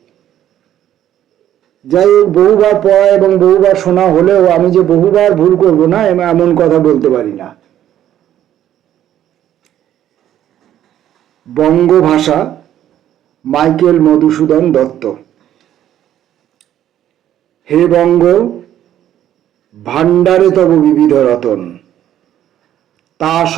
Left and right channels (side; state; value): left; quieter; 11.5 dB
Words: যাই হোক, বহুবার পড়া এবং বহুবার শোনা হলেও আমি যে বহুবার ভুল করব না এমন কথা বলতে পারি না। বঙ্গভাষা, মাইকেল মধুসূদন দত্ত। হে বঙ্গ, ভাণ্ডারে তব বিবিধ রতন, তা